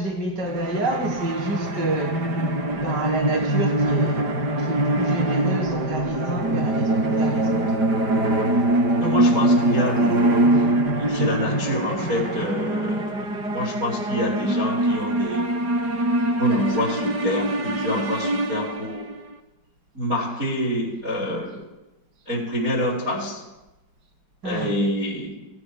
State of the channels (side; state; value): left; late; 5.0 ms